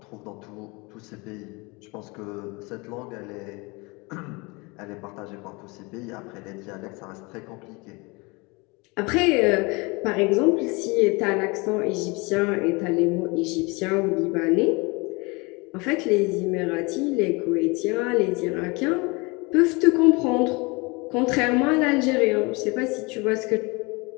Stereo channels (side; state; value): right; quieter; 26.9 dB